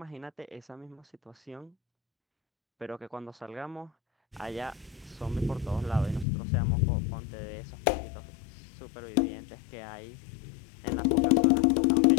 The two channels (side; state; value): right; drops out; at 6.2 s